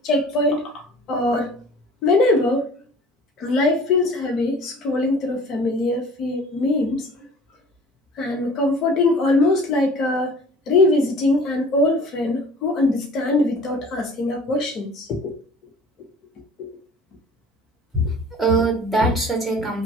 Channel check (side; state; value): both; normal; correlation 0.46